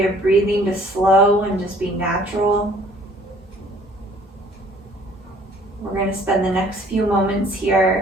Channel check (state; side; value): normal; both; correlation 0.56